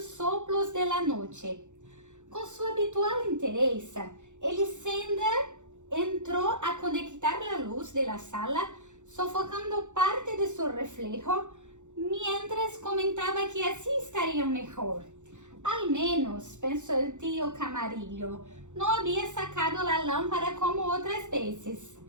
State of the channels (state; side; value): late; left; 0.85 ms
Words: soplos de la noche. Con su habitual entereza, Elisenda entró a conectar la luz de la sala, sofocando parte de su reflejo, mientras comentaba que así estaría mejor. Al menos, pensó el tío Camarillo, no había sacado la lámpara como otras veces,